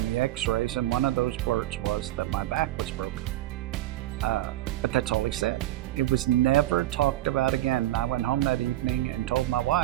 the x-rays, and one of those words was that my back was broken. But that's all he said. It was never talked about again. I went home that evening and told my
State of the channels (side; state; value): left; quieter; 15.0 dB